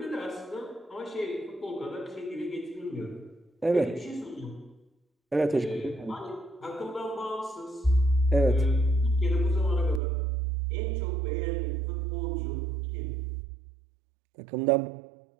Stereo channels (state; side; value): drops out; left; at 10.0 s